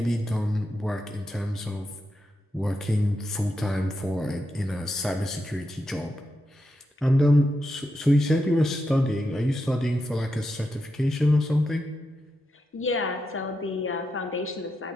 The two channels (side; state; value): both; normal; correlation 0.86